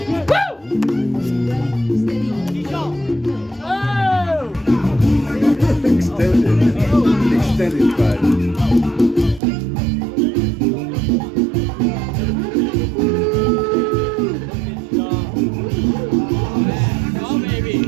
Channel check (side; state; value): left; drops out; at 9.4 s